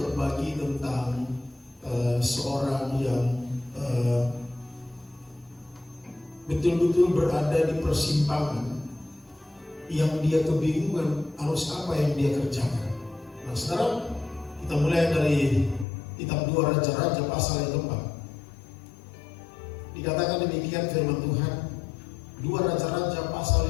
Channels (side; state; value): right; drops out; at 15.9 s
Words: tentang seorang yang betul-betul berada di persimpangan, yang dia kebingungan harus apa yang dia kerjakan. Nah sekarang kita mulai dari kitab 2 Raja-Raja pasal yang keempat. Dikatakan demikian firman Tuhan, 2 Raja-Raja pasal